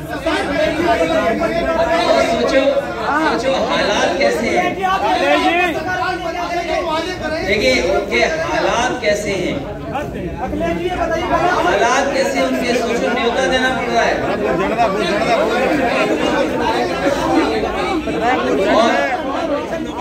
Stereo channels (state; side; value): identical; both; correlation 1.00